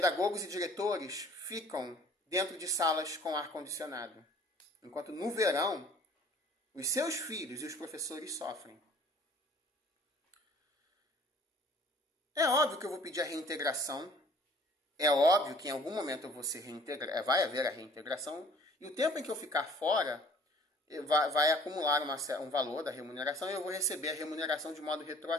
e diretores ficam dentro de salas com ar-condicionado. Enquanto no verão, os seus filhos e os professores sofrem. É óbvio que eu vou pedir a reintegração. É óbvio que em algum momento eu vou ser reintegrado, vai haver a reintegração. E o tempo em que eu ficar fora, vai acumular um valor da remuneração e eu vou receber a remuneração de modo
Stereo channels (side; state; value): both; normal; correlation 0.54